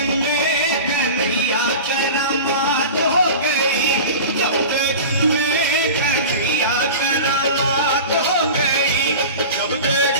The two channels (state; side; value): inverted; both; correlation -0.33